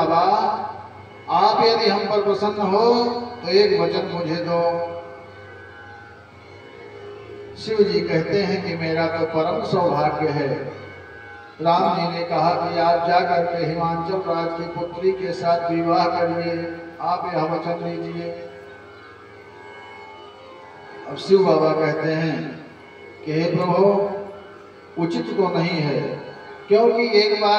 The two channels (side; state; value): both; identical; correlation 1.00